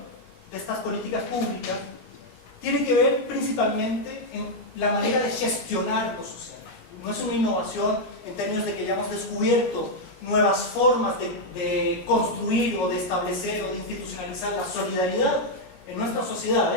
de estas políticas públicas tiene que ver principalmente en la manera de gestionar lo social. No es una innovación en términos de que hayamos descubierto nuevas formas de construir o de establecer o de institucionalizar la solidaridad en nuestras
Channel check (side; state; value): right; late; 16 ms